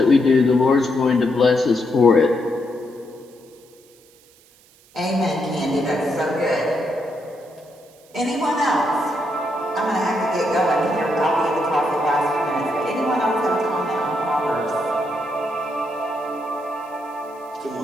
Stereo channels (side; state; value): right; noise; hiss, 29 dB below the sound